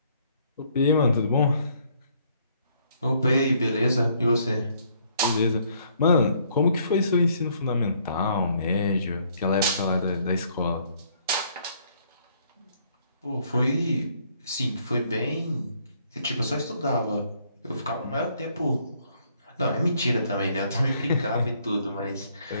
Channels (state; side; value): inverted; both; correlation -0.66